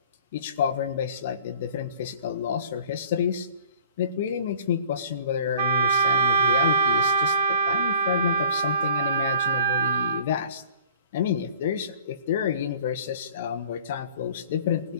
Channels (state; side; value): inverted; both; correlation -0.50